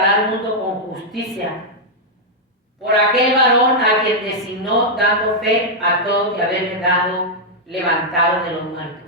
al mundo con justicia, por aquel varón a quien designó, dando fe a todos y haberle dado levantado de los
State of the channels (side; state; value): both; normal; correlation -0.04